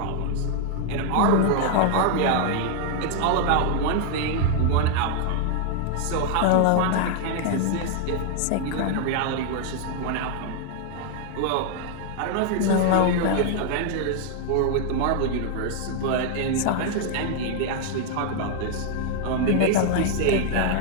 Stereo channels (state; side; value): different; both; correlation 0.00